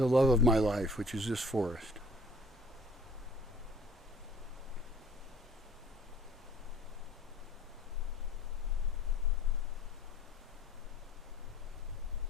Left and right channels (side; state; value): both; normal; correlation 0.53